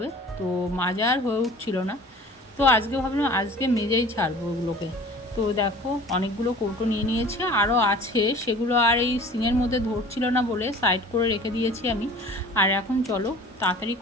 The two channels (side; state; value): both; normal; correlation 0.45